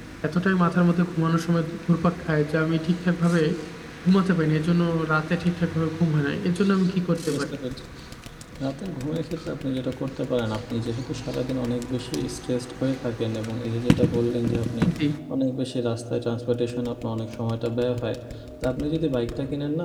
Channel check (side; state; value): both; identical; correlation 1.00